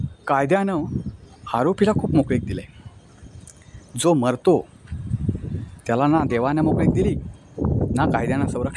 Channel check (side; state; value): both; identical; correlation 1.00